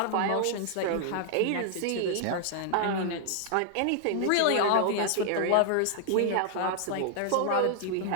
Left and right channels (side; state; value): both; different; correlation 0.00